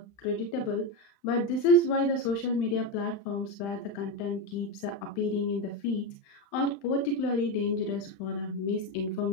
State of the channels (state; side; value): late; right; 35 ms